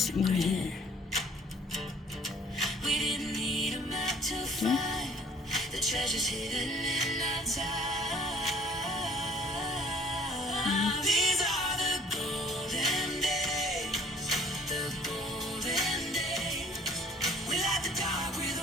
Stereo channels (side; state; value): both; normal; correlation 0.56